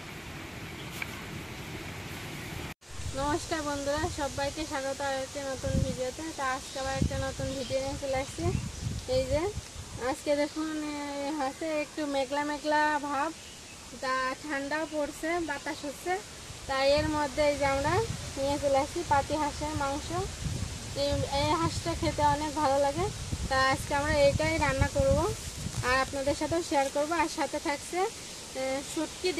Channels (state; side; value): identical; both; correlation 1.00